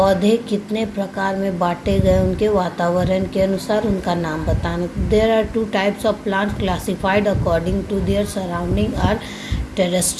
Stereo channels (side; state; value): both; identical; correlation 1.00